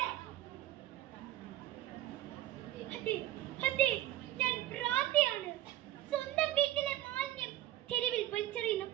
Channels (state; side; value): quieter; left; 13.9 dB